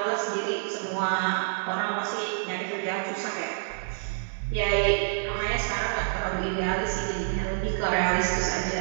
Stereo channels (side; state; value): left; silent; 60 dB below the other